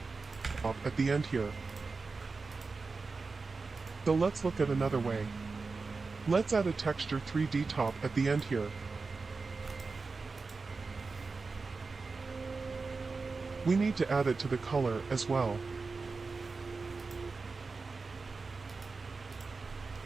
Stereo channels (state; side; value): quieter; left; 4.2 dB